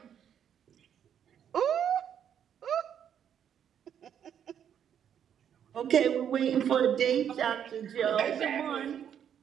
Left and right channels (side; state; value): left; quieter; 9.0 dB